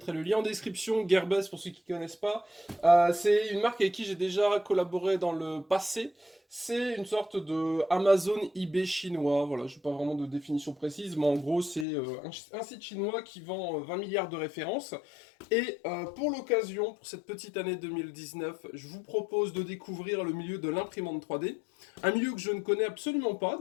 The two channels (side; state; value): right; drops out; at 11.9 s